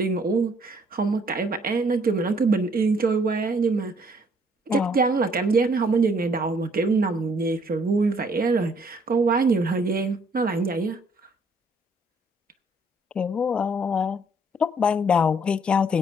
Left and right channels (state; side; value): normal; both; correlation 0.64